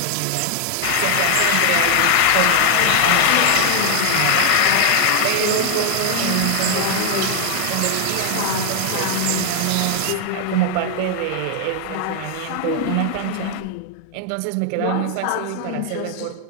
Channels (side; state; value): both; different; correlation 0.00